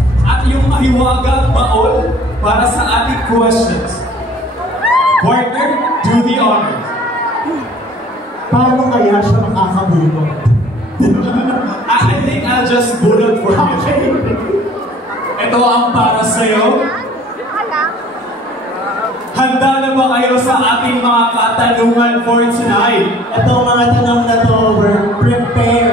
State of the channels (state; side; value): normal; both; correlation 0.53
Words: At yung mahiwagang baon para sa ating questions. Partner, do the honors. Paano kaya siya makakabulong? I think I'll just bullet for you. Ito ang para sa'yo. Handa na ba kayo sa ating mga katanungan for tonight? Ito mga tanong na to, we're